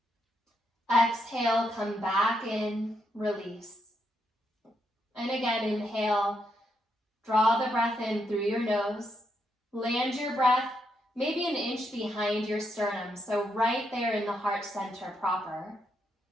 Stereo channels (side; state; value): both; normal; correlation 0.79